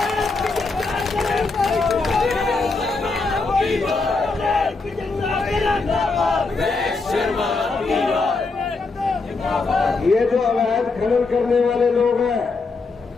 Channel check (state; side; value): quieter; right; 3.9 dB